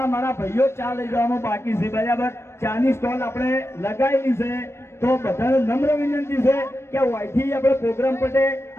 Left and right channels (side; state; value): right; late; 0.12 ms